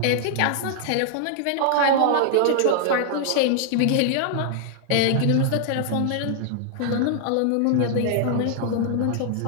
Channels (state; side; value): different; both; correlation 0.00